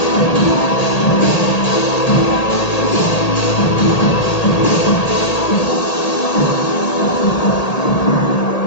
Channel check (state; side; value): late; right; 1.8 ms